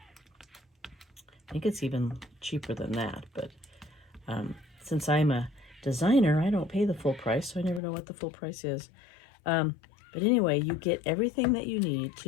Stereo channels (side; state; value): right; drops out; at 7.8 s